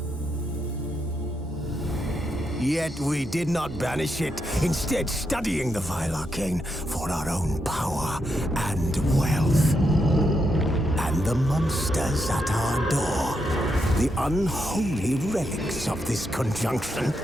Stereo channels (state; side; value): normal; both; correlation 0.82